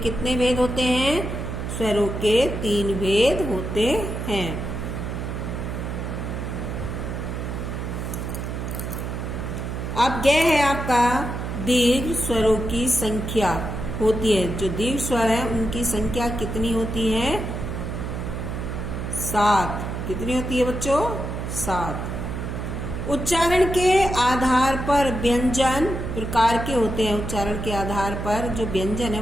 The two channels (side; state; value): right; noise; hum, 5 dB below the sound